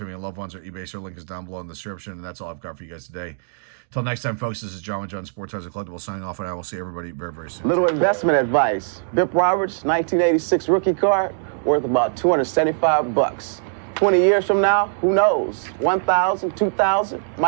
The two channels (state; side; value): silent; left; digital silence